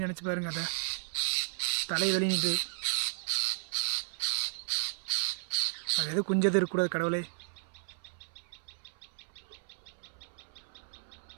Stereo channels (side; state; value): left; silent; 55 dB below the other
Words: நினச்சி பாருங்க, அதை தலை வெளியிட்டு அது எது குஞ்சது இருக்கக்கூடாது கடவுளே.